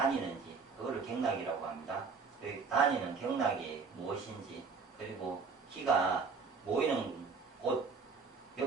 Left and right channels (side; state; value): left; quieter; 5.0 dB